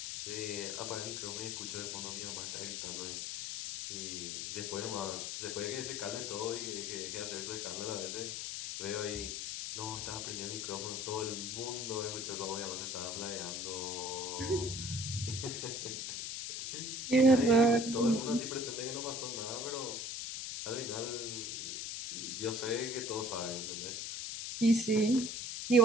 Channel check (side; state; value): left; noise; hiss, 4 dB below the sound